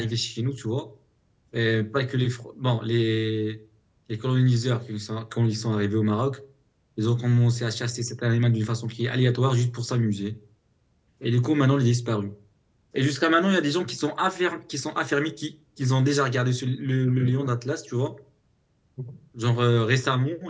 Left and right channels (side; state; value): both; identical; correlation 1.00